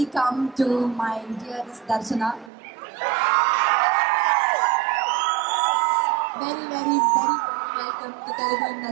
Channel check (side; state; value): left; drops out; at 2.5 s